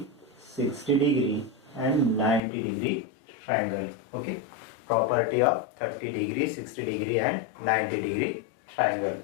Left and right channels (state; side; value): drops out; right; at 2.4 s